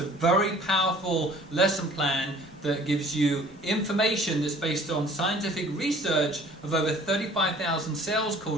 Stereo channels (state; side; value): noise; right; rumble, 28 dB below the sound